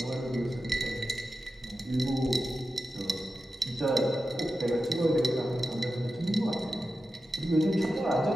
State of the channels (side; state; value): both; normal; correlation 0.92